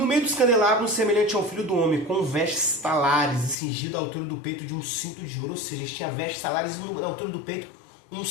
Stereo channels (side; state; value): right; drops out; at 3.6 s